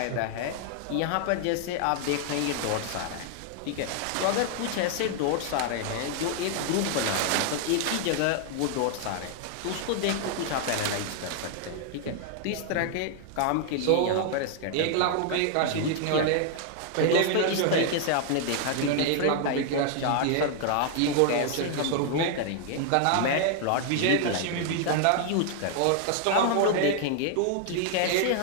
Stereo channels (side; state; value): both; different; correlation 0.00